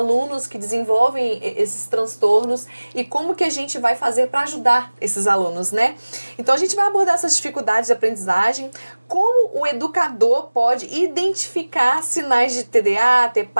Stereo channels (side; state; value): both; inverted; correlation -1.00